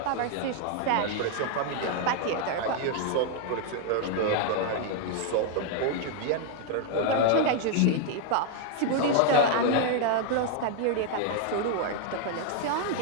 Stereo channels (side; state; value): both; different; correlation 0.00